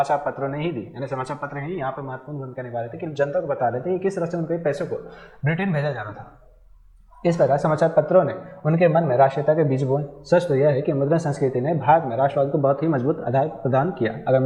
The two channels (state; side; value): identical; both; correlation 1.00